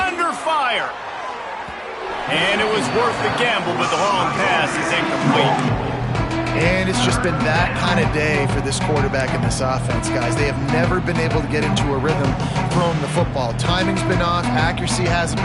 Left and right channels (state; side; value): identical; both; correlation 1.00